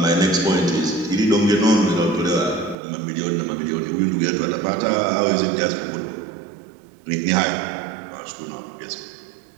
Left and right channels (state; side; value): drops out; left; at 2.8 s